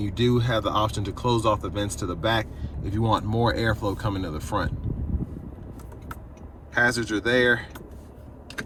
do have the option to close off the vents to the back if you want more airflow coming to the front. Hazards are there.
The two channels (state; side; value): identical; both; correlation 1.00